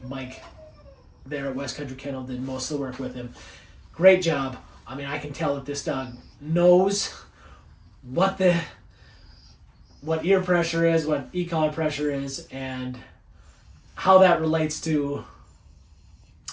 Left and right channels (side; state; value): both; identical; correlation 1.00